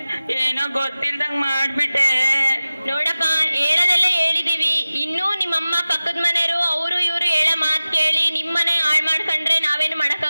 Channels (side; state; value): both; inverted; correlation -0.96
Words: ಏನೋ ಗೊತ್ತಿಲ್ದಂಗ್ ಮಾಡ್ಬಿಟ್ಟೆ. ನೋಡಪ್ಪ, ಹೇಳದೆಲ್ಲ ಹೇಳಿದೀವಿ. ಇನ್ನೂ ನಿಮ್ಮಮ್ಮ ಪಕ್ಕದ ಮನೆಯವರು ಅವರು ಇವರು ಹೇಳೋ ಮಾತು ಕೇಳಿ ನಿಮ್ಮನೆ ಹಾಳು ಮಾಡ್ಕೊಂಡ್ರೆ ನಾವೇನು